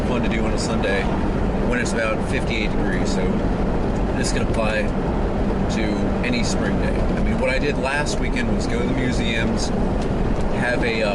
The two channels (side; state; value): both; identical; correlation 1.00